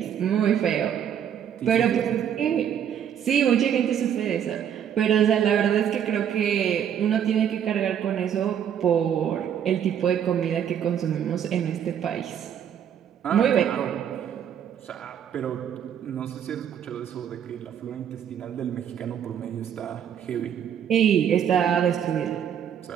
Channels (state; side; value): quieter; left; 9.1 dB